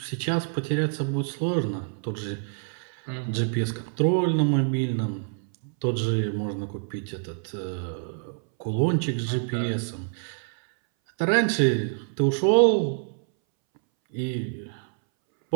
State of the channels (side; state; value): left; silent; 61 dB below the other